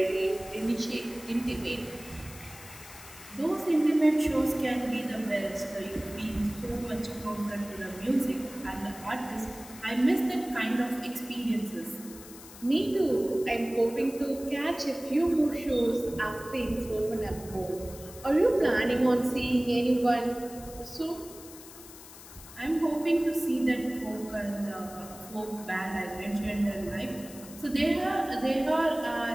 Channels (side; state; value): left; noise; hiss, 17 dB below the sound